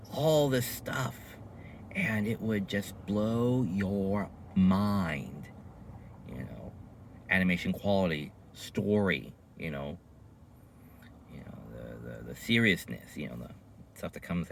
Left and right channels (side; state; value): both; identical; correlation 1.00